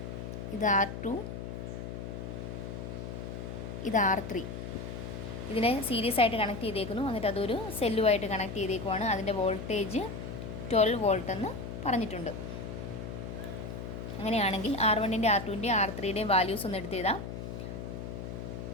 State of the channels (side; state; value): left; noise; hum, 7 dB below the sound